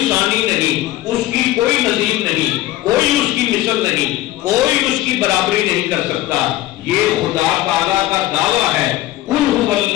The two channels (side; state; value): right; quieter; 15.7 dB